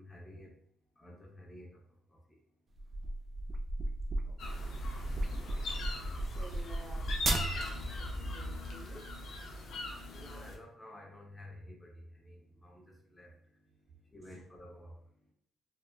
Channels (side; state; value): both; normal; correlation 0.86